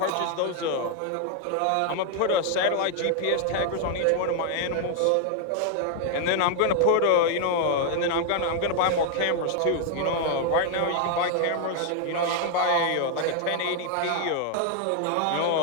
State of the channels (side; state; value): both; different; correlation 0.00